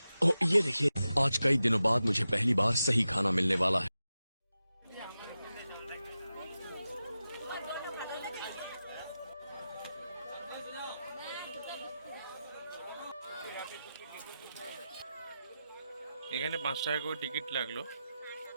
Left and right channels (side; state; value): both; inverted; correlation -0.92